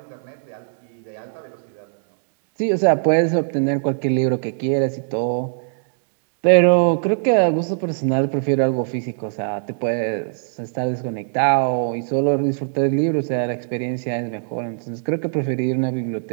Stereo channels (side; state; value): left; silent; digital silence